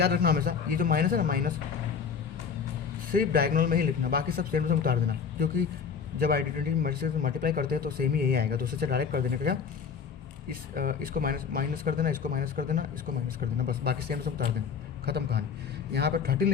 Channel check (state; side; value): quieter; right; 6.4 dB